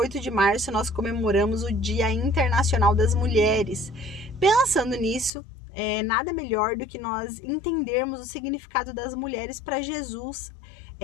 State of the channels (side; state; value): right; drops out; at 5.3 s